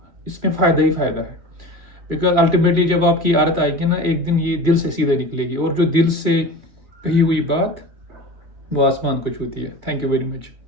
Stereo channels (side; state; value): left; late; 2.4 ms